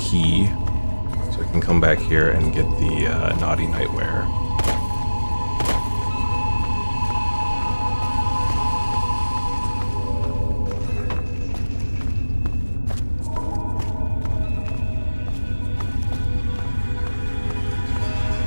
Can come back here and get the naughty nightwear.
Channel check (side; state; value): both; inverted; correlation -1.00